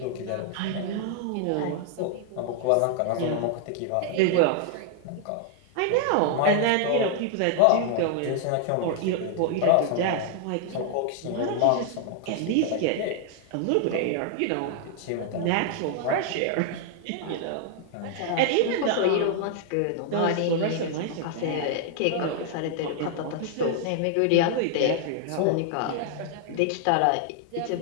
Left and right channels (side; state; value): both; different; correlation 0.00